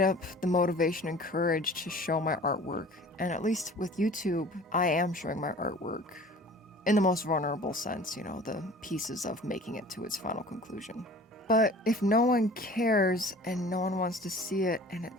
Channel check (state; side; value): normal; both; correlation 0.45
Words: up the motivation and courage to show my artwork. And at least with YouTube, I am showing my artwork in the most vulnerable sense, you know, the pieces of making it to its final conclusion. But if no one cares and no one wants to see it, and